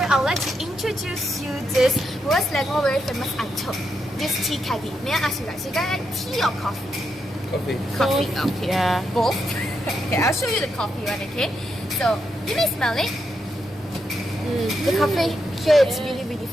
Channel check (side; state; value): both; normal; correlation 0.82